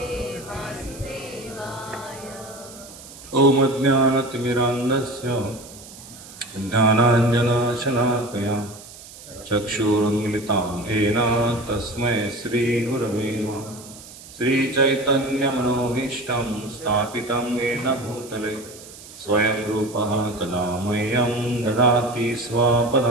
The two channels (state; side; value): noise; right; hiss, 17 dB below the sound